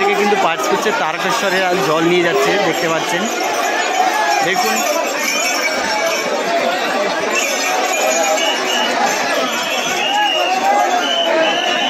কিন্তু পাস করছে, তারকেশ্বরে আর জল নিয়ে যাচ্ছে, দেখতে পাচ্ছেন, দেখুন।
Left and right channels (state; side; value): identical; both; correlation 1.00